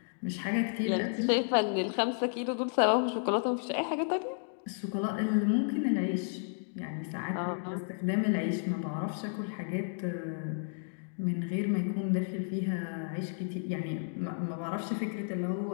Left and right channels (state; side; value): silent; right; digital silence